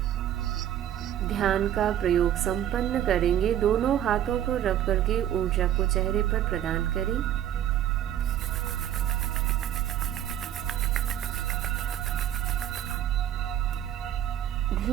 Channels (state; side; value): quieter; left; 11.2 dB